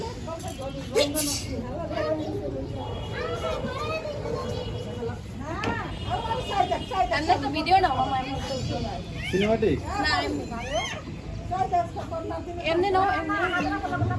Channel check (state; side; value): identical; both; correlation 1.00